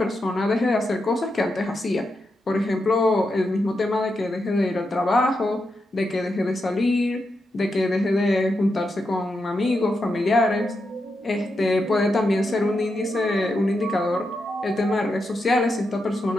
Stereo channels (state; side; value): normal; both; correlation 0.85